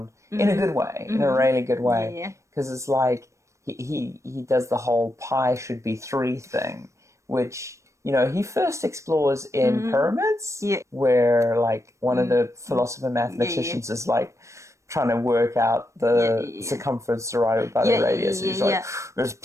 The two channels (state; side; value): late; left; 0.15 ms